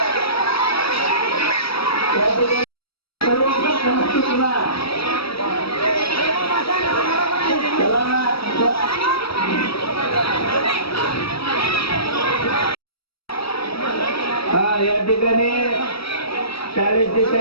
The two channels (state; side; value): late; right; 0.76 ms